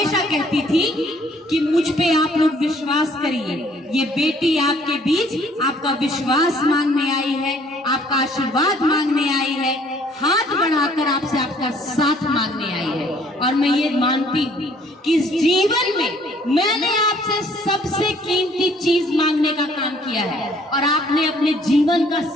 कहती थी कि मुझ पे आप लोग विश्वास करिए, ये बेटी आपके बीच आपका विश्वास मांगने आई है, आपका आशीर्वाद मांगने आई है, हाथ बढ़ाकर आपसे आपका साथ मांगने आई है। और मैं ये मानती हूँ कि इस जीवन में मैंने आपसे सबसे कीमती चीज मांगने का काम किया है और आपने अपने जीवन का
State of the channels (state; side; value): normal; both; correlation 0.60